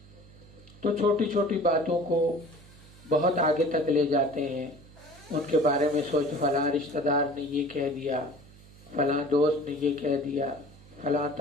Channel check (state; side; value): noise; right; hum, 22 dB below the sound